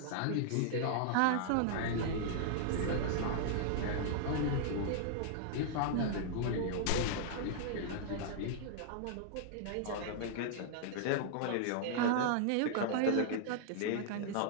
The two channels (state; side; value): different; both; correlation -0.01